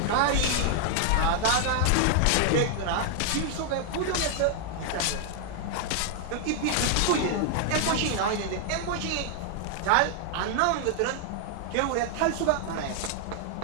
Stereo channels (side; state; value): both; different; correlation 0.00